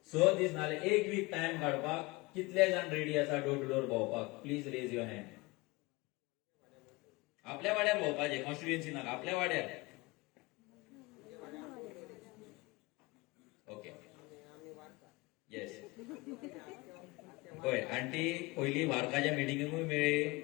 6 दीस नाल्यार एक वीक टाइम काडपाक कितले जाण रेडी आसा डोर टू डोर भोंवपाक प्लीज रेज युअर हँड आपल्या वाड्यार भोंवपाचें कॉन्स्टिट्युएन्सी नाका आपल्या वाड्यार ओके येस पळय आंटी पयली वार्काच्या मिटिंगेकूय मेळ्ळी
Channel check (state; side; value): quieter; right; 23.6 dB